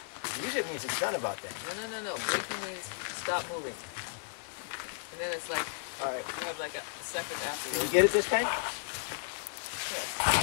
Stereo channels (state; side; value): silent; right; digital silence